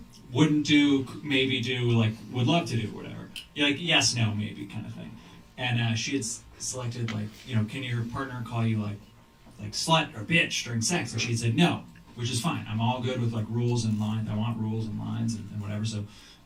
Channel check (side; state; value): both; identical; correlation 1.00